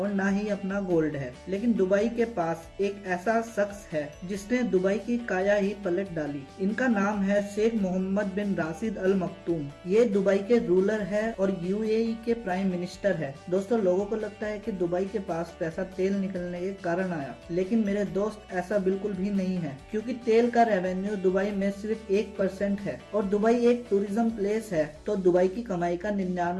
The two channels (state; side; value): identical; both; correlation 1.00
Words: ना ही अपना गोल्ड है, लेकिन दुबई के पास एक ऐसा शख्स है जिसने दुबई की काया ही पलट डाली। इनका नाम है शेख मोहम्मद बिन राशिद अल मखतूम। ये दुबई के रूलर है और यूएई के प्राइम मिनिस्टर है। दोस्तों, लोगों को लगता है कि दुबई के पास पैसा तेल निकलने के कारण आया, लेकिन मेरे दोस्त ऐसा बिल्कुल भी नहीं है, क्योंकि तेल का रेवेन्यू दुबई में सिर्फ 1% है और दुबई एक टूरिज्म प्लेस है, तो दुबई की कमाई का